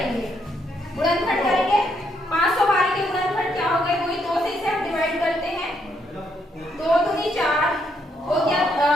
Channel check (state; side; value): normal; both; correlation 0.75